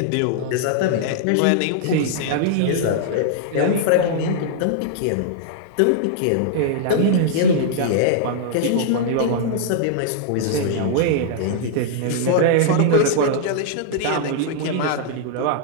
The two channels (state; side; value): different; both; correlation -0.01